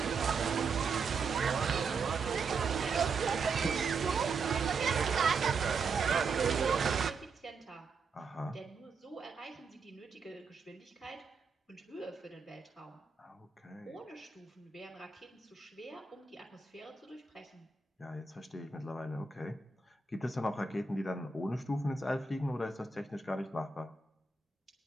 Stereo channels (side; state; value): left; quieter; 4.6 dB